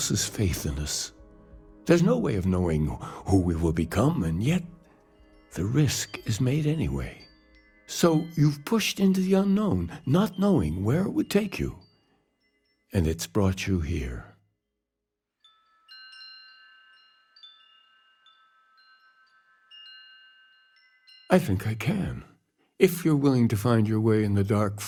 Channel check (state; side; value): identical; both; correlation 1.00